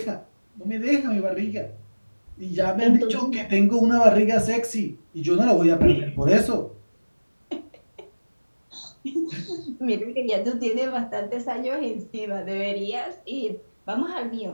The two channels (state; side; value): inverted; both; correlation -1.00